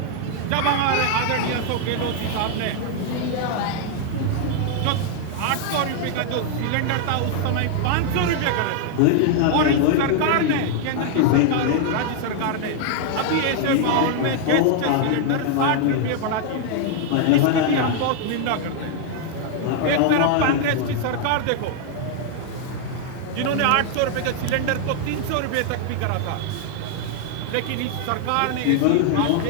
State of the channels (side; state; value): both; different; correlation 0.00